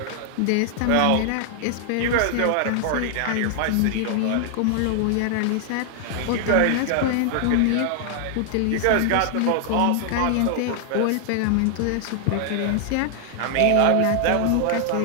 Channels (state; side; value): different; both; correlation 0.00